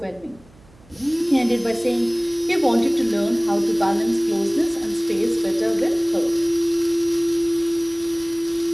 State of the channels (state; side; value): noise; right; hum, 27 dB below the sound